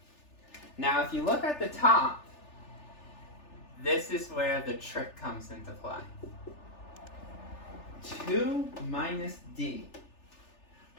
Now, if you look at the top, this is where the trick comes into play. 2 minus d.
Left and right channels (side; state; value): right; late; 3.4 ms